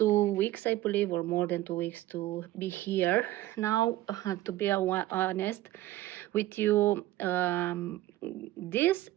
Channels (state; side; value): quieter; left; 15.9 dB